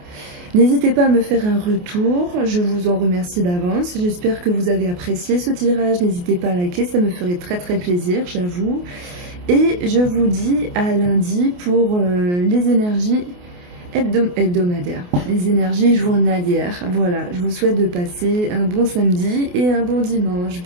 N'hésitez pas à me faire un retour, je vous en remercie d'avance. J'espère que vous avez apprécié ce tirage. N'hésitez pas à liker, ça me ferait très très plaisir, j'avoue. Et je vous dis à lundi pour les énergies hebdomadaires, les énergies journalières. Voilà, je vous souhaite de passer un bon samedi et un bon dimanche.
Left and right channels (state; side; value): late; left; 28 ms